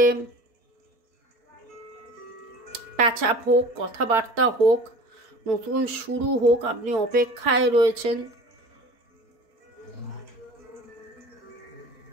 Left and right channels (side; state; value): left; late; 4.5 ms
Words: প্যাচআপ হোক, কথাবার্তা হোক, নতুন শুরু হোক, আপনি অপেক্ষায় রয়েছেন।